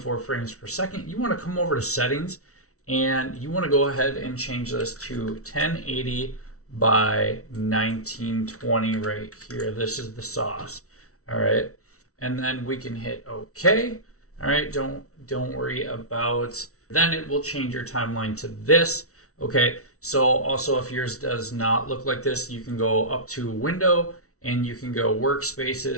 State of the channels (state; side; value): late; right; 0.64 ms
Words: frames per second. You wanna come over to settings, and you wanna go ahead and change this to 1080 by 1920 right here. This is the sauce, all right? And then we can hit okay, all right? Don't worry about, then it will change your timeline to this, okay? So also if yours does not look like this, you can go up to window and you can go